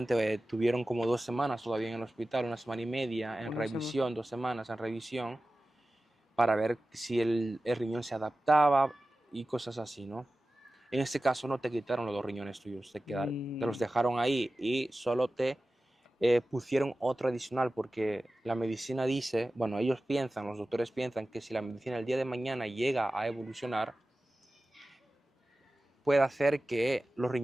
te tuvieron como 2 semanas todavía en el hospital, 1 semana y media en Una semana. revisión, 2 semanas en revisión, para ver si el riñón se adaptaba y cosas así, ¿no? En este caso no te quitaron los 2 riñones tuyos, te los Mm, dejaron ahí y solo te pusieron otro adicional porque la medicina dice, bueno, ellos piensan, los doctores piensan que si la medicina el día de mañana llega a evolucionar, puede hacer que los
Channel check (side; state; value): both; normal; correlation 0.95